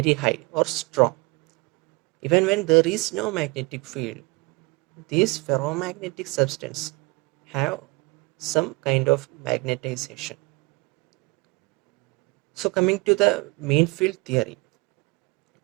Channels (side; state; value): left; quieter; 27.7 dB